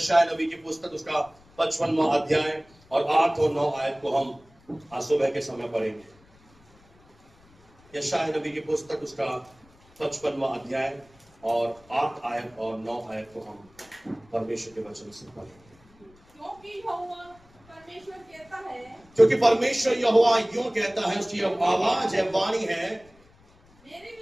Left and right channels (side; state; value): left; noise; rumble, 29 dB below the sound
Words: नबी की पुस्तक उसका 55वां अध्याय और 8 और 9 आयत को हम आज सुबह के समय पढ़ेंगे। यशायाह नबी की पुस्तक उसका 55वां अध्याय और 8 आयत और 9 आयत को हम परमेश्वर के वचन से पढ़ेंगे। क्योंकि परमेश्वर यहोवा यूं कहता है, उसकी आवाज है, वाणी है, मेरे